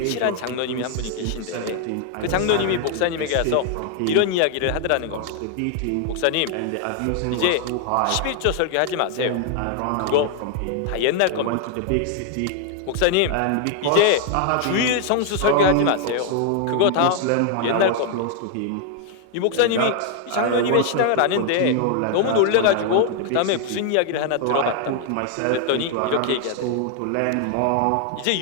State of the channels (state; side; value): different; both; correlation 0.00